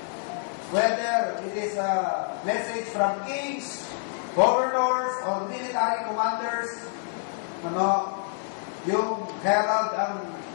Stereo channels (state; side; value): silent; right; digital silence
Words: Whether it is a message from kings, governors, or military commanders, yung herald